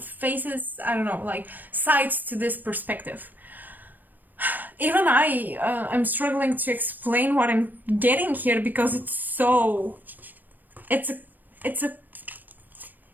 I don't know, like sides to this perspective. Even I'm struggling to explain what I'm getting here, because it's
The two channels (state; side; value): late; left; 0.088 ms